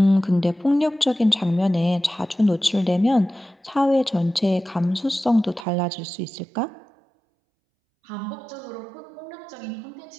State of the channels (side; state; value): left; drops out; at 5.7 s